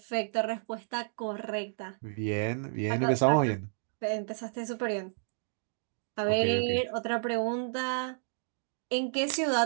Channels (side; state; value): left; silent; digital silence